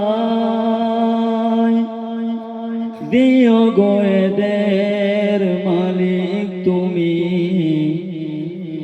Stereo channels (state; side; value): identical; both; correlation 1.00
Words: দিও গো এদের মালিক তুমি